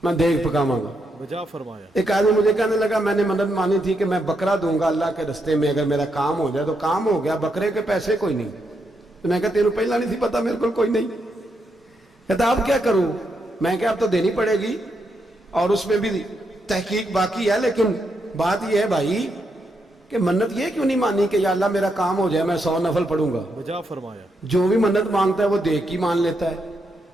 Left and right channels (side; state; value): both; normal; correlation 0.81